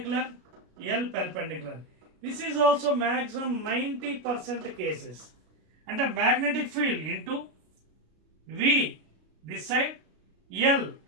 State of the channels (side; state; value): left; late; 33 ms